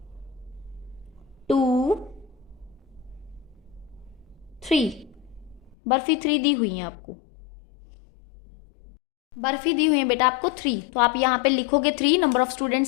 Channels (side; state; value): right; drops out; at 5.8 s